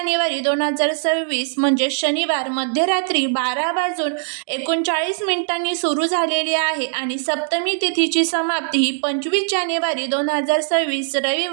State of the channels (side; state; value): left; silent; digital silence